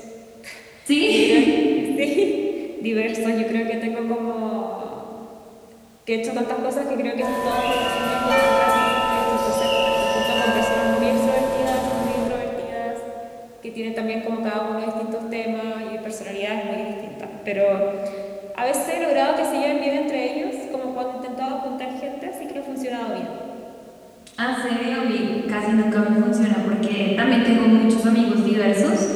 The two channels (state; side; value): identical; both; correlation 1.00